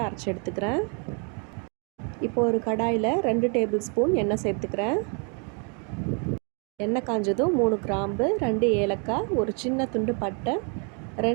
அரைச்சி எடுத்துக்கிறேன். இப்போது ஒரு கடாயில் 2 டேபிள் ஸ்பூன் எண்ணெய் சேர்த்துக்கிறேன். எண்ணெய் காஞ்சதும் 3 கிராம்பு, 2 ஏலக்காய், ஒரு சின்ன துண்டு பட்டை,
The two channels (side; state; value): left; quieter; 37.4 dB